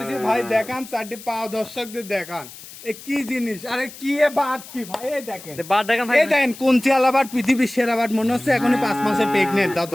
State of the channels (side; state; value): left; noise; hiss, 16 dB below the sound